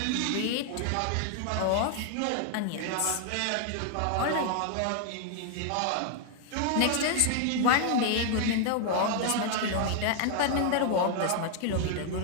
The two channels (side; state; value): both; different; correlation 0.00